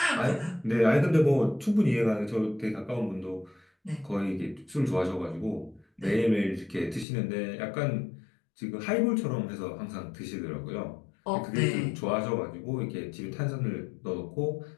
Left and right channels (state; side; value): drops out; right; at 7.1 s